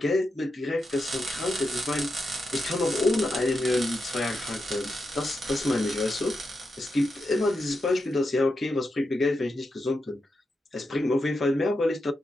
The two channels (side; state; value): both; normal; correlation 0.87